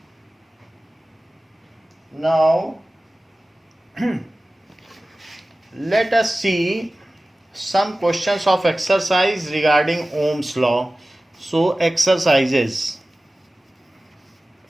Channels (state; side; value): normal; both; correlation 0.96